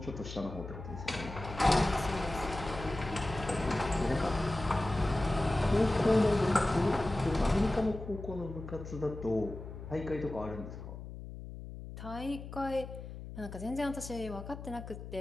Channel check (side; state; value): left; noise; hum, 11 dB below the sound